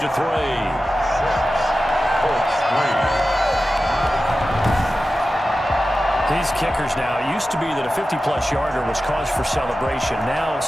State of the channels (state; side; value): normal; both; correlation 0.94